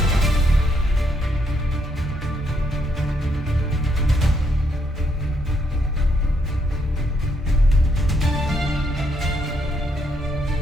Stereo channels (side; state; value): both; normal; correlation 0.74